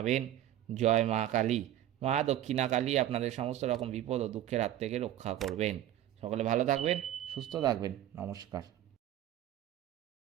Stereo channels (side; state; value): left; quieter; 12.4 dB